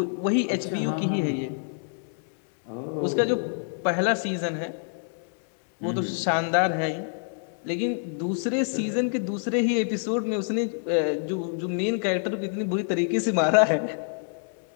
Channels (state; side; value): silent; right; digital silence